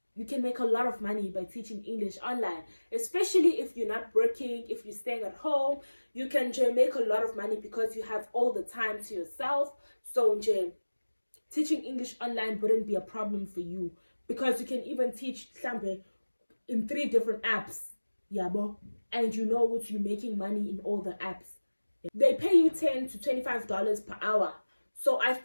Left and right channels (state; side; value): inverted; both; correlation -1.00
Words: you can make a lot of money by teaching English online, especially if you're not working, if you're staying at home. You can make a lot of money because you have all the time to yourself. So teaching English online wouldn't be a problem for you, because you can even teach in 3 different apps, yabo, and you know what, you're making money in all the apps. They pay you $10 to $25 per hour. So I